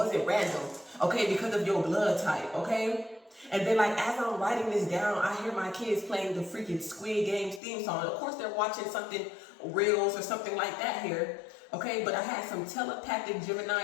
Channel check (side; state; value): right; drops out; at 7.6 s